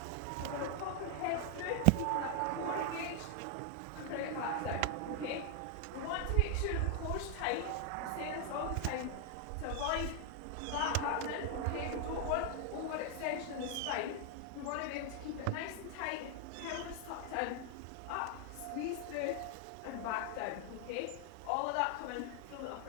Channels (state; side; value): different; both; correlation 0.00